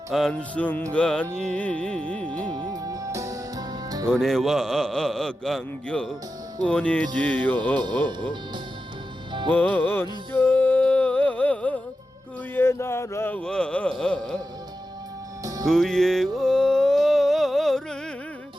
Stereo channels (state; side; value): normal; both; correlation 0.91